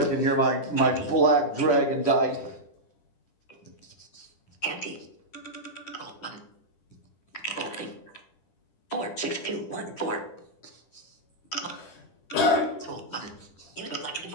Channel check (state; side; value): late; right; 10 ms